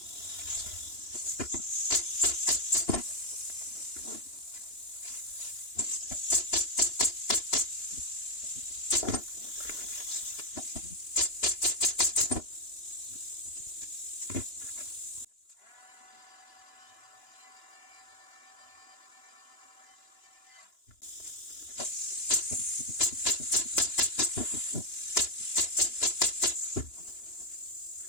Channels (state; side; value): late; right; 2.9 ms